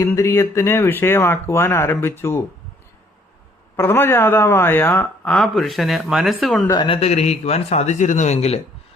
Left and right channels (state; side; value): normal; both; correlation 0.62